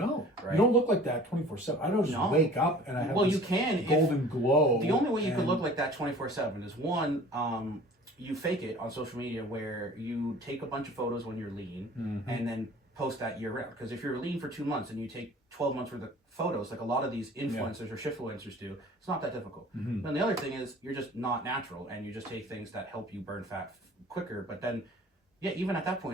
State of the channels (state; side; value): normal; both; correlation 0.46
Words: right? You don't look like that 24/7. I don't just wake up and I have you can golden glow. The only way you could look like that 24/7 is one, you fake it on social media where you take a bunch of photos when you're lean and then post that year round. Because if you're lean for 2 months and you take 12 months worth of photos, like a lot of these influencers or shiftfluencers do, it's not that difficult. And the other thing is you're just not natural and you just take things that help you burn fat quicker. But then, even at that